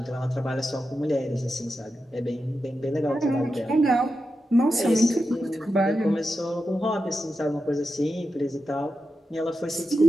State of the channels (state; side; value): normal; both; correlation 0.89